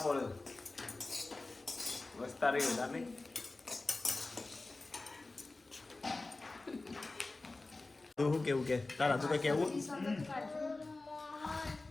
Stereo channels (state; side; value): quieter; right; 3.2 dB